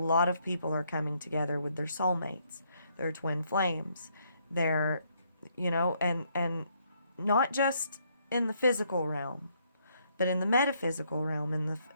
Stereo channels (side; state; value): both; inverted; correlation -0.71